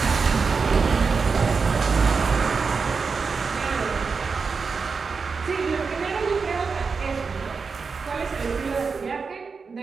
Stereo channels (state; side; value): quieter; left; 5.0 dB